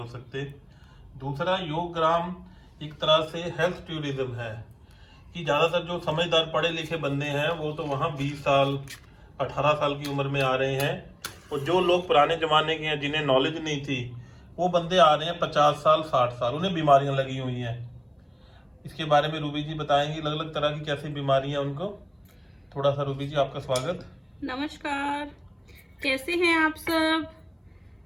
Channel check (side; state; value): both; identical; correlation 1.00